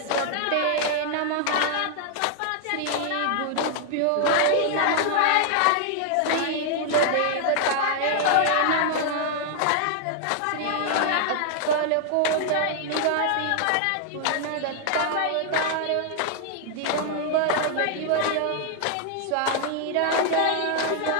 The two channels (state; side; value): different; both; correlation 0.00